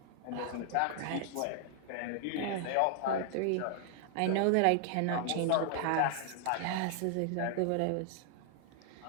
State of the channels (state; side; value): different; both; correlation 0.00